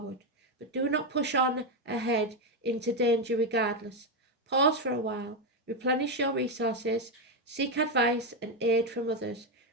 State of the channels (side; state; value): both; normal; correlation 0.06